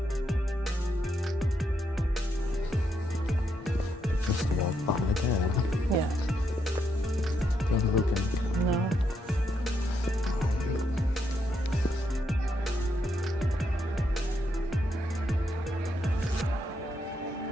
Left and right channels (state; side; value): normal; both; correlation 0.79